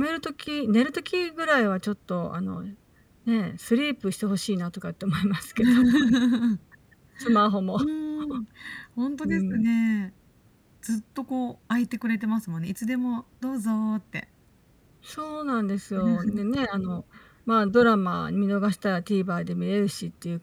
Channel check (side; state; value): both; identical; correlation 1.00